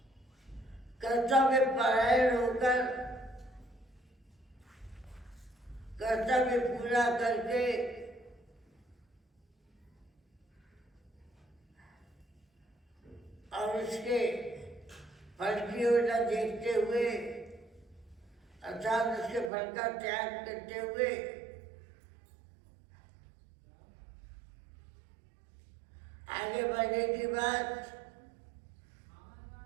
कर्तव्य परायण होकर कर्तव्य पूरा करके और उसके फल की ओर न देखते हुए, अर्थात उसके फल का त्याग करते हुए आगे बढ़ने की बात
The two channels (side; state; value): left; drops out; at 19.5 s